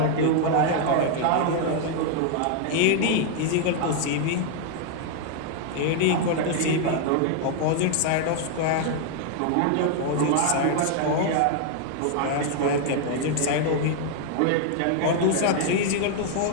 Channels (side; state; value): both; different; correlation 0.00